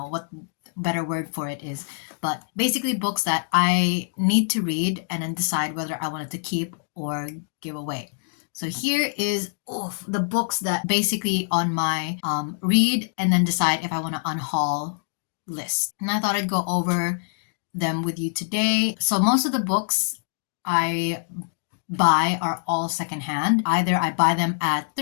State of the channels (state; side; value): silent; right; digital silence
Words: what better word for it is, but basically books that I need to read and then decide whether I wanted to keep or give away. So here is the books that basically on my read and then decide if I want to unhaul list. And I thought I'd go over them with you today. So most of the books I buy are all secondhand. Either I buy them at